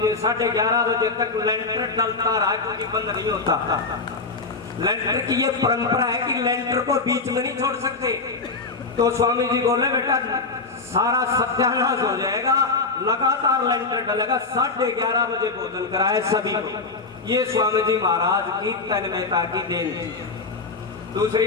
जी। 11:30 बजे तक लेंटर डलता रहा, क्योंकि बंद नहीं होता। लेंटर की ये परंपरा है कि लेंटर को बीच में नहीं छोड़ सकते। तो स्वामी जी बोले बेटा सारा सत्यानाश हो जाएगा, लगातार लेंटर डलेगा। 11:30 बजे भोजन कराए सभी को। ये स्वामी जी महाराज की तन्मयता की देन थी। दूसरी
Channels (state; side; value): quieter; right; 4.0 dB